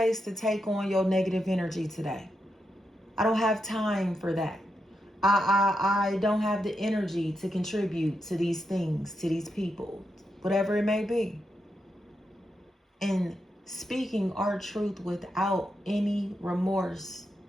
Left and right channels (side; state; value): both; normal; correlation 0.84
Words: to take on your negative energy today. I don't have time for that. I don't have the energy to contribute to these things, to these people, whatever it may be. And speaking our truth without any remorse.